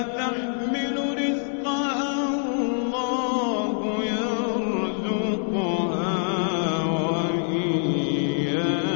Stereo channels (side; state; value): right; silent; 62 dB below the other